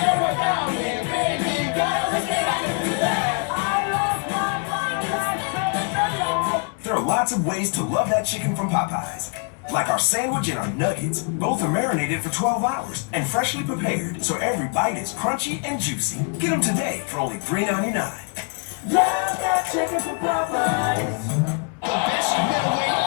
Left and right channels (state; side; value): quieter; right; 38.5 dB